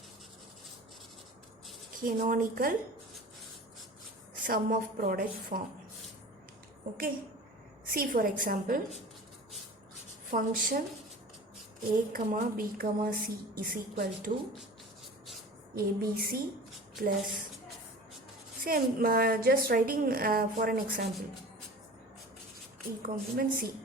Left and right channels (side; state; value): both; normal; correlation 0.39